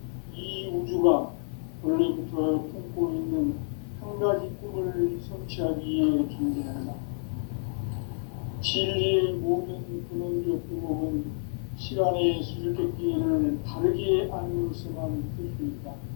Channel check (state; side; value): silent; right; 59 dB below the other